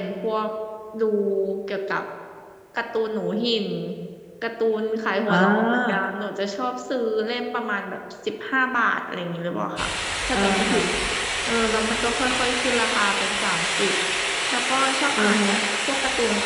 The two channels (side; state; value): both; identical; correlation 1.00